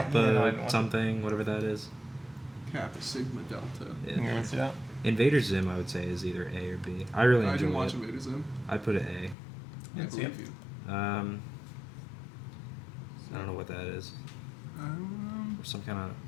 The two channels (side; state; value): right; drops out; at 9.3 s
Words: Yeah, no, I didn't watch it. something, whatever that is. Kappa Sigma Delta. Yeah. You want to see that? Invader Zim, I would say, is either A or B. I really I enjoy didn't watch it. Invader Zim. I put it A. I Didn't see it. believe you. I don't know what that is. Some kind of.